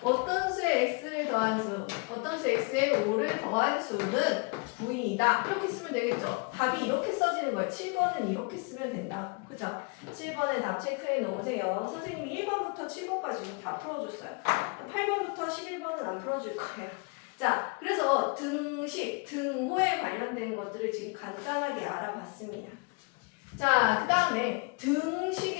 어떤 수에 x를 더한 수, 어떤 수 x에 5를 더한 수는 9이다. 이렇게 쓰면 되겠죠. 답이 이렇게 써지는 거예요. 7번은 이렇게 쓰면 된다. 그죠? 7번에 답 체크해 놓으세요. 선생님이 1번부터 7번까지 다 풀어줬어요. 8번부터 11번은 안 풀어줄 거예요. 자, 그래서 등식, 등호에 관련된 것들을 지금 간단하게 알아봤습니다. 자, 그 다음에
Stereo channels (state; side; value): quieter; right; 32.2 dB